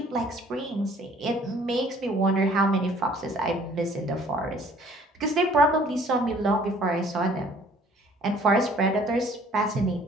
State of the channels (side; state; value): both; normal; correlation 0.55